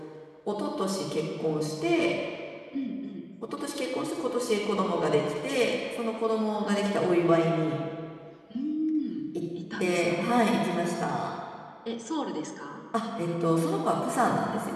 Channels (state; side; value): identical; both; correlation 1.00